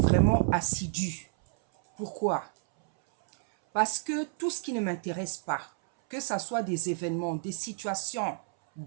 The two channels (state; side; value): silent; left; 58 dB below the other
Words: assidue. Pourquoi? Parce que tout ce qui ne m'intéresse pas, que ce soit des événements, des situations,